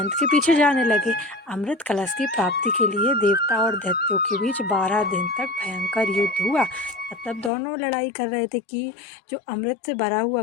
के पीछे जाने लगे। अमृत कलश की प्राप्ति के लिए देवता और दैत्यों के बीच 12 दिन तक भयंकर युद्ध हुआ। मतलब दोनों लड़ाई कर रहे थे कि जो अमृत से भरा हुआ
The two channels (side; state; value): right; drops out; at 7.5 s